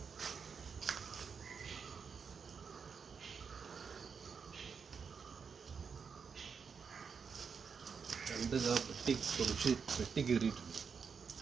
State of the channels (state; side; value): quieter; left; 6.0 dB